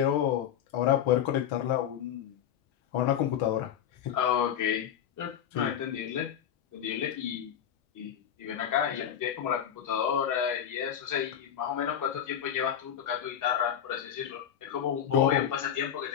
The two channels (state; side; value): quieter; right; 9.5 dB